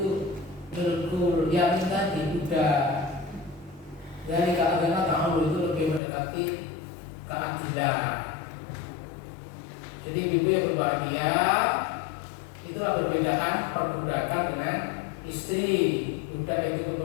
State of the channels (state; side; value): drops out; right; at 6.0 s